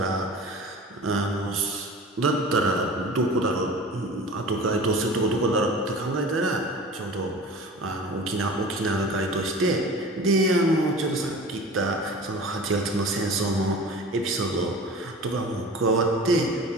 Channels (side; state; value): both; normal; correlation 0.39